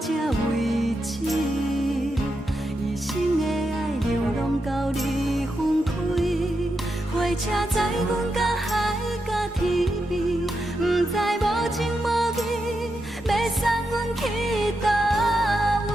为止。一生的爱流浪到你分开，火车载阮甲海甲天边，不知无情无义，要送阮去倒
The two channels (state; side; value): normal; both; correlation 0.86